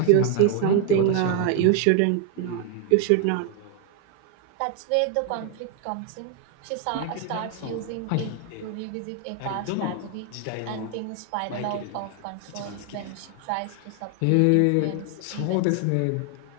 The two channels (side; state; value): both; different; correlation 0.01